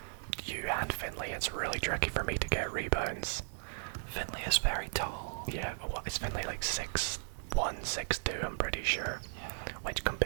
you and Finley, it's really tricky for me to get rebounds. Finley is very tall. Yeah, what is Finley like 6'1", 6'2", I'm pretty sure. Yeah. Which,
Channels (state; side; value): silent; left; digital silence